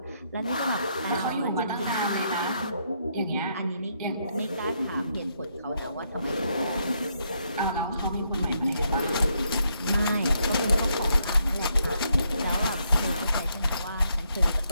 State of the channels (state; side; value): inverted; both; correlation -0.76